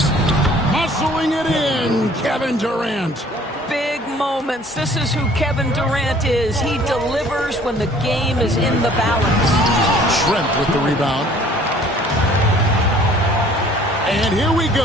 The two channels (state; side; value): normal; both; correlation 0.54